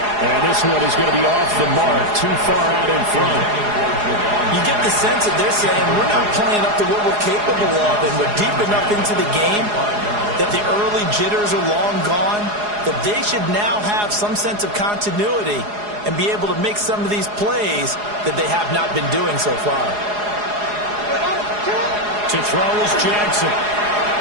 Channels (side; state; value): left; late; 4.8 ms